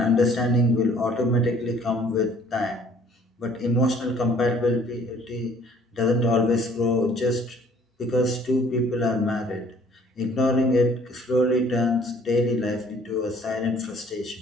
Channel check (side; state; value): both; normal; correlation 0.57